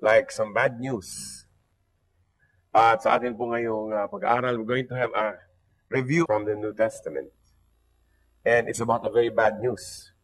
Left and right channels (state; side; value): identical; both; correlation 1.00